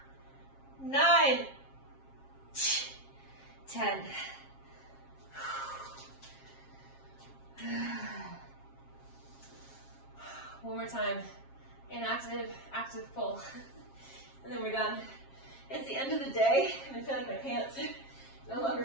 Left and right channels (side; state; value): right; late; 7.4 ms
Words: 9. 10. One more time. Inactive, active pull. And then we're done. It's the end of the day, and I feel like my pants no longer